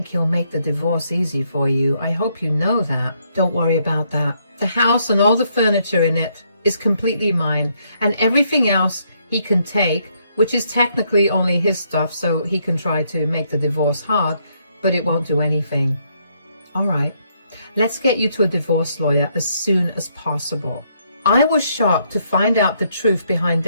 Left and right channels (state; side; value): inverted; both; correlation -0.73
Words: he'll make the divorce easy for you. I hope you know that. Don't worry about that. The house and all the furniture in it is completely mine, and everything else he can take, which is technically only his stuff, so he can try to make the divorce hard, but it won't do anything. All right, let's get you to a divorce lawyer as soon as possible. I was shocked to find out the truth behind